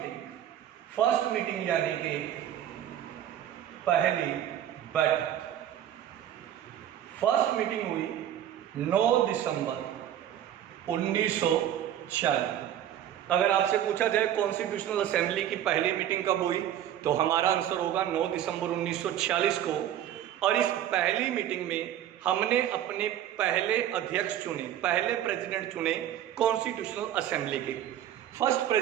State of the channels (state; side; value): quieter; left; 11.1 dB